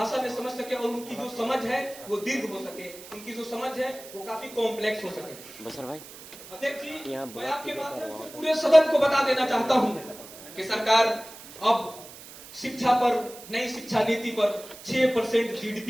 में समझ सके और उनकी जो समझ है वो दीर्घ हो सके, उनकी जो समझ है वो काफी कॉम्प्लेक्स हो सके। बसर भाई, अध्यक्ष जी, मैं आपके माध्यम से पूरे सदन को बता देना चाहता हूं कि सरकार अब शिक्षा पर, नई शिक्षा नीति पर 6%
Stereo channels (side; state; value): right; noise; hiss, 17 dB below the sound